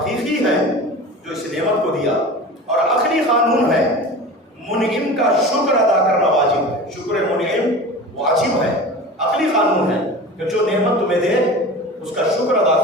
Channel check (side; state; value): both; normal; correlation 0.34